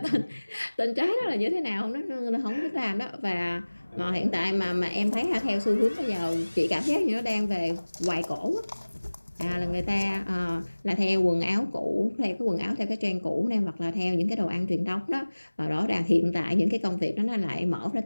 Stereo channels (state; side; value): inverted; both; correlation -1.00